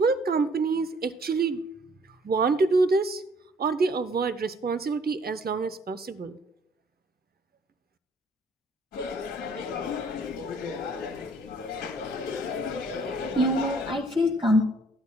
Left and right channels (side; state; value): both; normal; correlation 0.60